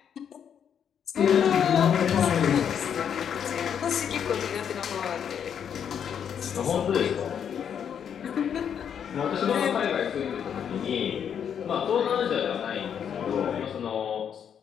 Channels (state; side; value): quieter; right; 8.2 dB